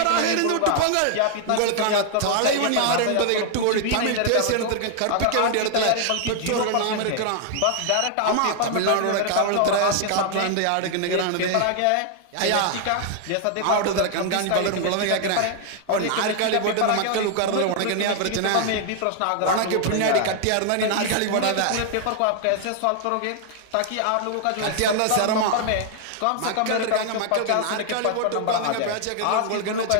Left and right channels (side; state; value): both; different; correlation 0.00